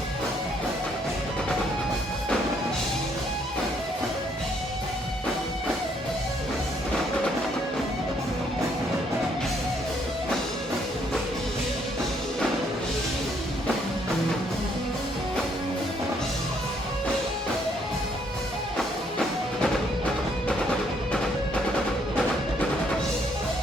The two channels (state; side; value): normal; both; correlation 0.69